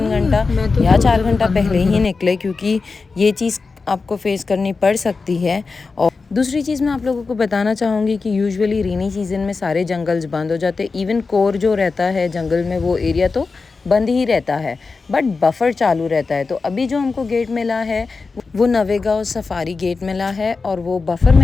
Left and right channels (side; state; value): right; quieter; 4.3 dB